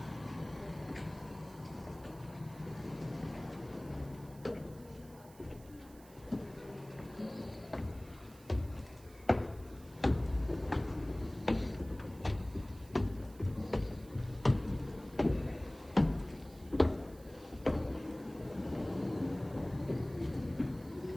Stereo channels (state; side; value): noise; right; hiss, 23 dB below the sound